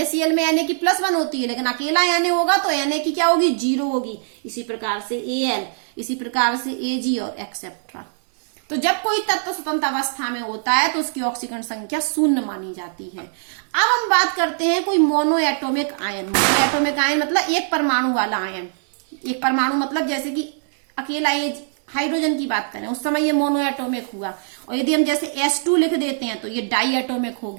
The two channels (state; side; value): silent; left; 65 dB below the other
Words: में Na की +1 होती है, लेकिन अकेला Na होगा तो Na की क्या होगी? 0 होगी। इसी प्रकार से Al, इसी प्रकार से Ag और एक्सेट्रा। तो जब कोई तत्व स्वतंत्र अवस्था में होता है तो उसकी ऑक्सीकरण संख्या 0 मानी जाती है। अब हम बात करते हैं कोई मोनोएटोमिक आयन। मोनोएटोमिक आयन मतलब एक परमाणु वाला आयन। एक परमाणु मतलब जैसे कि अकेला ये हाइड्रोजन की बात करें, उस समय ये मोनोएटोमिक हुआ। और यदि हम जैसे H2 लिख देते हैं तो ये डाईएटोमिक हो